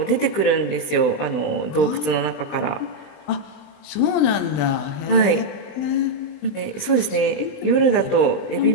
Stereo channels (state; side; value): late; right; 20 ms